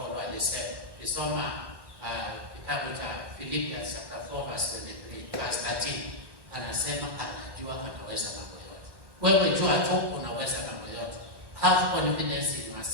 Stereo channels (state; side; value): late; left; 1.1 ms